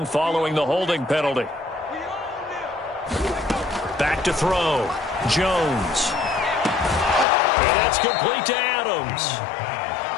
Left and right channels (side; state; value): right; drops out; at 7.2 s